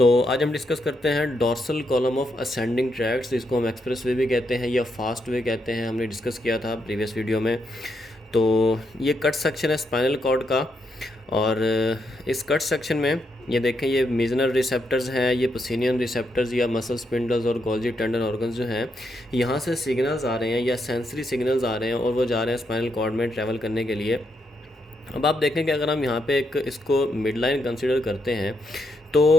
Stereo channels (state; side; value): normal; both; correlation 0.80